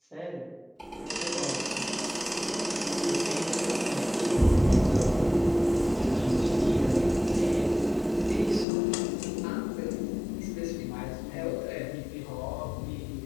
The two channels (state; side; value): drops out; right; at 8.7 s